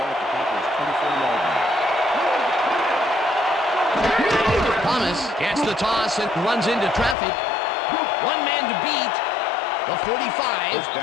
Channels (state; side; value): drops out; right; at 7.2 s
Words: at the Packers' 24-yard line. Thomas gets the toss and runs into traffic. One man to beat. The 45